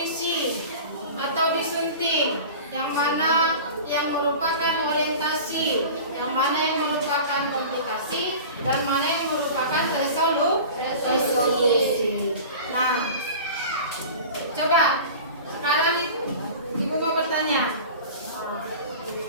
atau disunting, yang mana yang merupakan orientasi, yang mana yang merupakan komputasi, dan mana yang merupakan resolusi. Nah, coba sekarang Ibu mau bertanya,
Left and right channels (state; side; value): inverted; both; correlation -0.37